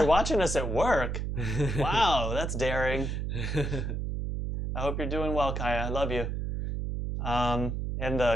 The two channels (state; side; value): noise; right; hum, 2 dB below the sound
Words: watching us at work. Wow, that's daring. I hope you're doing well, Kaya. I love you. And